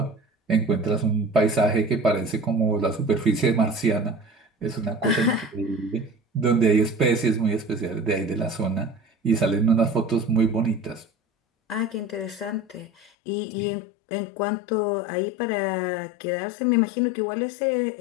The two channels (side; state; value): right; drops out; at 13.1 s